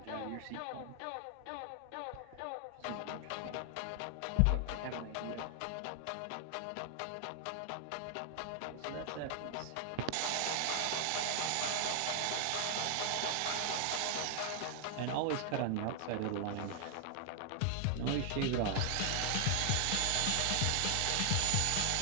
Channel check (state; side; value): different; both; correlation 0.00